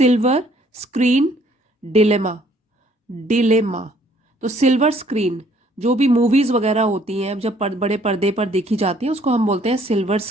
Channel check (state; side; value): normal; both; correlation 0.62